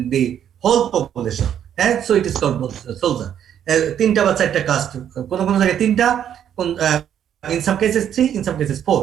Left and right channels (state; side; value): quieter; left; 9.6 dB